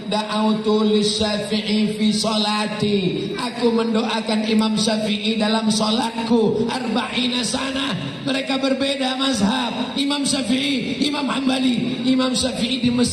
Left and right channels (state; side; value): identical; both; correlation 1.00